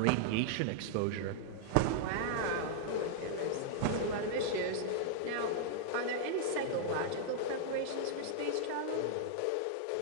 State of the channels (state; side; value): different; both; correlation -0.01